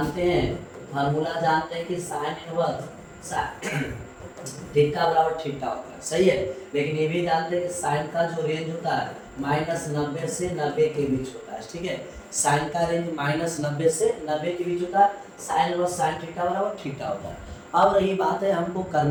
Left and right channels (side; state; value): both; identical; correlation 1.00